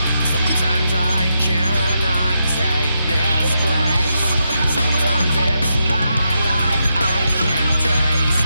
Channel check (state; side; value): inverted; both; correlation -0.83